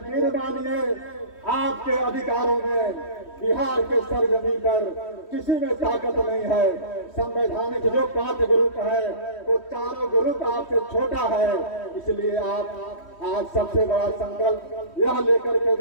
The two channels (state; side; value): late; right; 3.1 ms